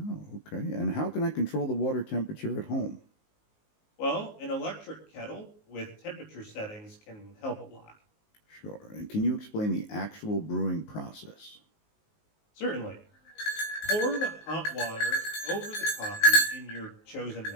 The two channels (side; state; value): right; late; 19 ms